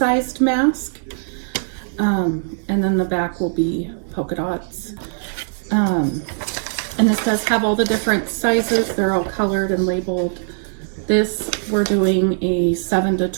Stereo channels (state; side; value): silent; left; digital silence